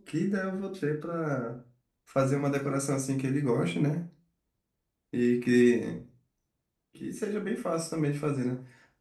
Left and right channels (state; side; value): identical; both; correlation 1.00